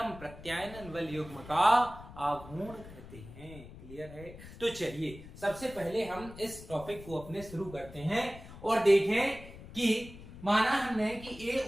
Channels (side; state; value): left; noise; rumble, 16 dB below the sound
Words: प्रत्यायनन बल युग्म का आघूर्ण कहते हैं। क्लियर है? तो चलिए सबसे पहले हम इस टॉपिक को अपने शुरू करते हैं और देखें कि माना हमने कि ए